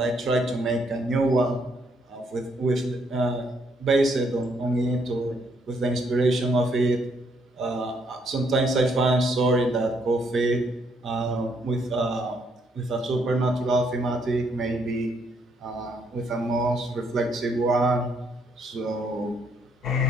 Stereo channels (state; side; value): normal; both; correlation 0.72